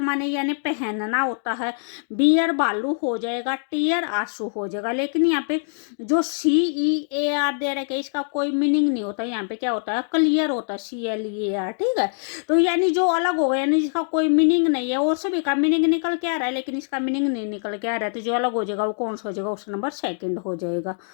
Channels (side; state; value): right; silent; digital silence